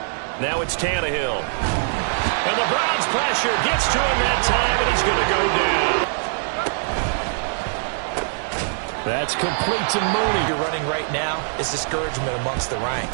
Now it's Tannehill. And the Browns pressure gets to him that time, and he's going to go down. That's complete to Mooney. You're running right now. It's discouragement amongst the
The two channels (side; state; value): left; silent; digital silence